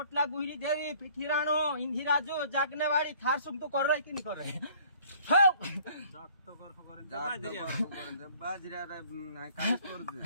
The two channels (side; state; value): both; inverted; correlation -0.55